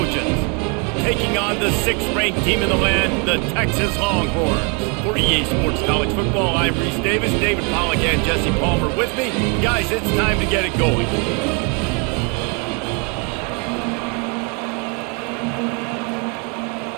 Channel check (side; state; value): left; quieter; 34.3 dB